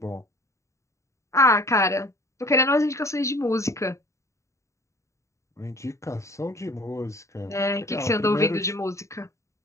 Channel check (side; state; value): right; late; 0.14 ms